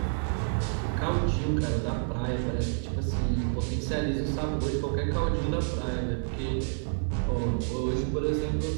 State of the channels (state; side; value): silent; left; digital silence